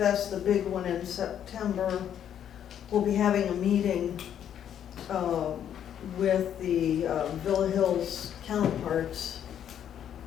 the big one in September, we'll be having a meeting with the Villa Hills counterparts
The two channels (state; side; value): quieter; right; 9.6 dB